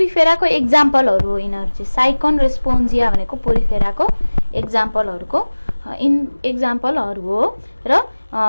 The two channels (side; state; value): both; inverted; correlation -1.00